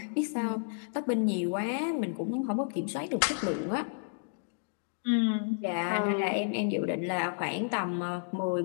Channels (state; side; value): silent; right; digital silence